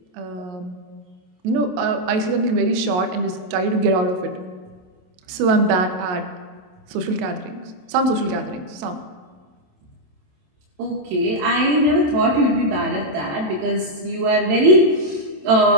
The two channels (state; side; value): late; left; 27 ms